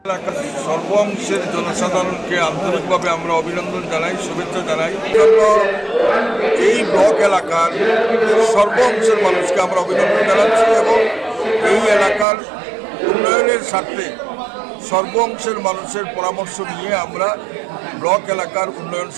এলাকার সর্ব অংশের জনসাধারণকে আন্তরিকভাবে আমরা অভিনন্দন জানাই, শুভেচ্ছা জানাই। এই ব্লক এলাকার সর্ব অংশের মানুষকে আমরা অভিনন্দন জানাচ্ছি এবং এই এলাকার উন্নয়নের স্বার্থে সর্ব অংশের মানুষের পরামর্শ নিয়ে আমরা ব্লক এলাকার উন্নয়ন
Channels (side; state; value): left; drops out; at 12.2 s